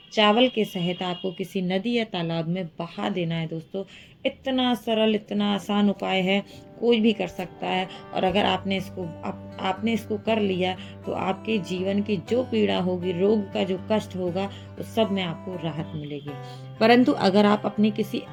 चावल के सहित आपको किसी नदी या तालाब में बहा देना है। दोस्तों, इतना सरल, इतना आसान उपाय है, कोई भी कर सकता है। और अगर आपने इसको कर लिया तो आपके जीवन की जो पीड़ा होगी, रोग का जो कष्ट होगा, उस सब में आपको राहत मिलेगी। परंतु अगर आप अपने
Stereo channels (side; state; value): both; identical; correlation 1.00